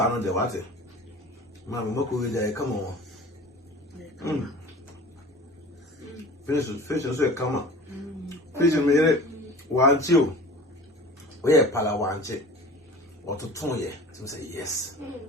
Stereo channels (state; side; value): normal; both; correlation 0.40